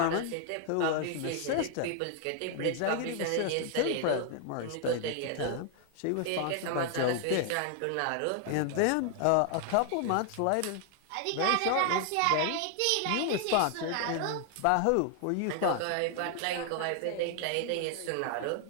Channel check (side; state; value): both; different; correlation 0.00